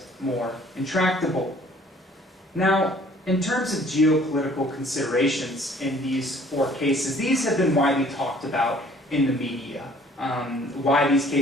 more intractable. Now, in terms of geopolitical considerations in these four cases, these have been widely talked about in the media. Why these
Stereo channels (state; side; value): normal; both; correlation 0.56